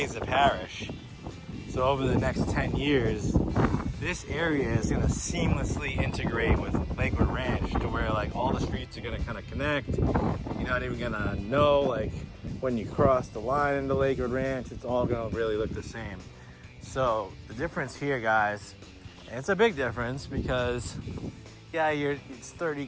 of Parrish. So over the next 10 years, this area is going to seamlessly integrate with Lakewood Ranch to where like all the streets are going to kind of connect. You're not even going to know like when you cross the line into Lakewood Ranch, it's all going to really look the same. So the difference here, guys, and it's a big difference because yeah, it's 30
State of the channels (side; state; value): both; identical; correlation 1.00